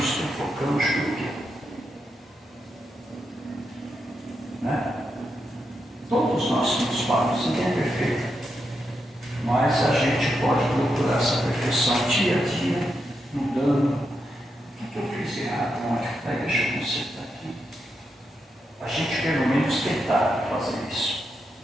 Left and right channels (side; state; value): both; normal; correlation 0.84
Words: sufocamos por quê? Né? Todos nós somos falhos, ninguém é perfeito. Mas a gente pode procurar essa perfeição dia a dia, mudando. O que eu fiz errado ontem? Deixa eu consertar aqui. A gente pelo menos tentar fazer isso.